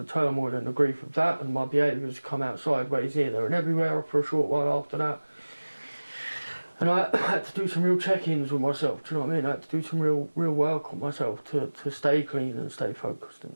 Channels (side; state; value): both; inverted; correlation -1.00